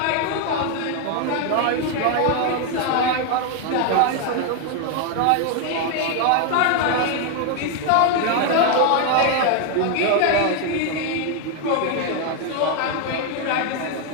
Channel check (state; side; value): different; both; correlation 0.01